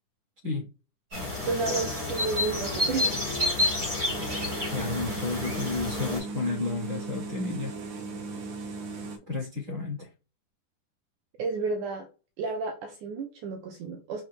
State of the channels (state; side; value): late; left; 10 ms